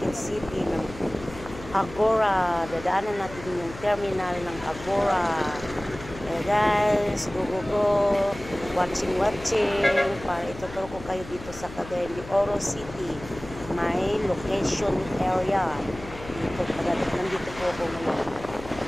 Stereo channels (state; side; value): noise; left; hum, 15 dB below the sound